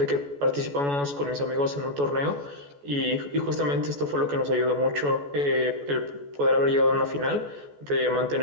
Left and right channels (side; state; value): left; late; 14 ms